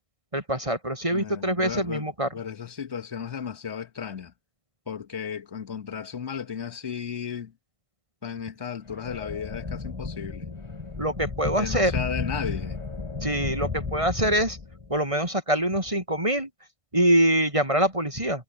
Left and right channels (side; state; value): left; late; 1.6 ms